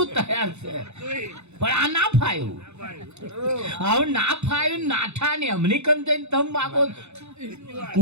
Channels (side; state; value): left; late; 0.81 ms